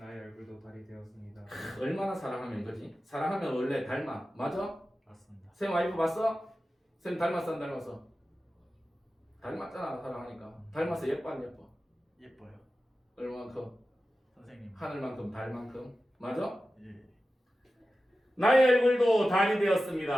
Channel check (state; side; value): normal; both; correlation 0.94